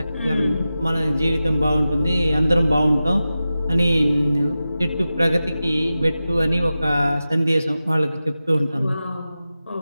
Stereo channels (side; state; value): both; inverted; correlation -0.94